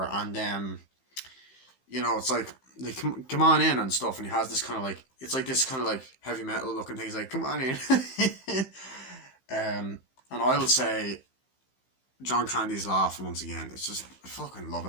And, you know, it's like, they come on in and stuff. And he has this kind of like, it's like this kind of like heavy metal looking thing. He's like, come on in. And I would say, John Candy's laugh once again. It's just, I fucking love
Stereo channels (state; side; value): late; right; 15 ms